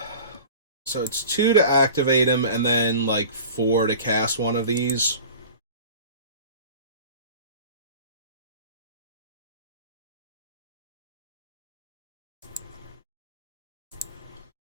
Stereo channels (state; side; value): inverted; both; correlation -0.39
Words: So it's 2 to activate him, and then, like, 4 to cast one of these.